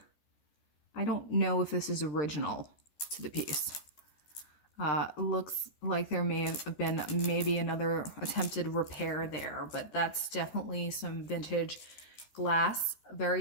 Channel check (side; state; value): right; late; 13 ms